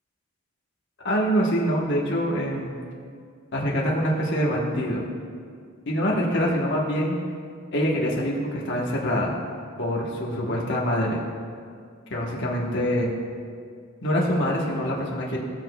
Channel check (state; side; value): normal; both; correlation 0.49